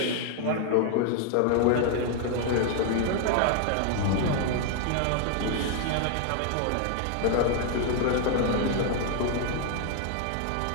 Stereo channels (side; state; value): both; different; correlation 0.00